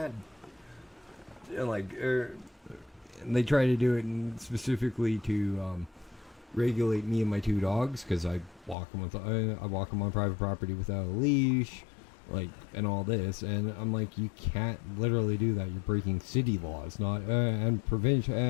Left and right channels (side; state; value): right; drops out; at 8.8 s